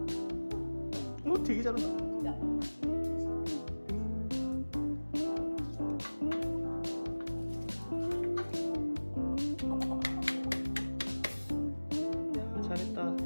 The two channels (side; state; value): both; inverted; correlation -1.00